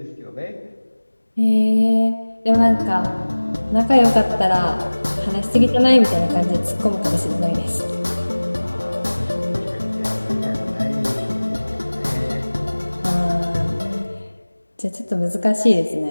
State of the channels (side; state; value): both; inverted; correlation -1.00